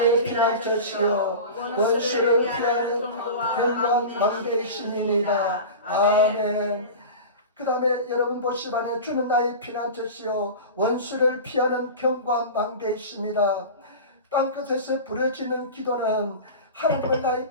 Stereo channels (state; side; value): inverted; both; correlation -0.31